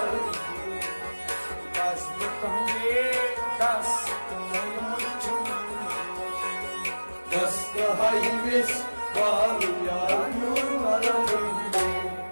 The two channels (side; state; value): both; inverted; correlation -1.00